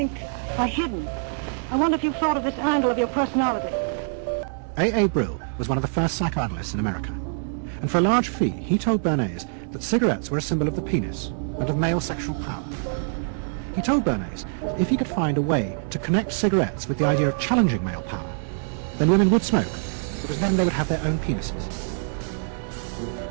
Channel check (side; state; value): left; silent; digital silence